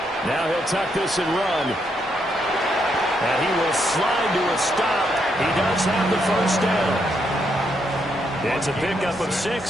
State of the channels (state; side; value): normal; both; correlation 0.77